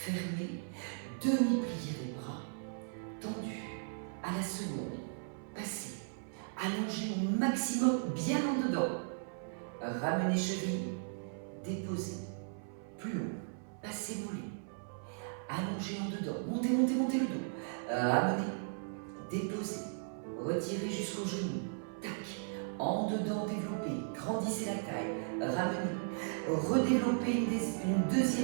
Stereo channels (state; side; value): silent; left; 53 dB below the other